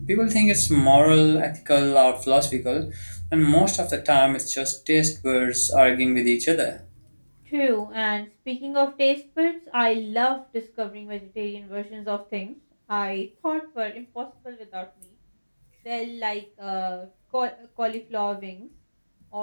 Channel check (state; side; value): inverted; both; correlation -1.00